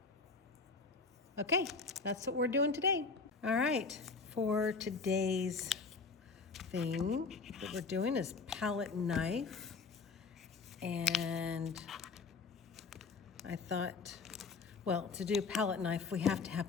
Okay, that's what we're doing today. All right, for today's thing that we're doing is palette knife. And I thought, well, to do palette knife, we have to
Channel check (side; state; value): right; quieter; 4.6 dB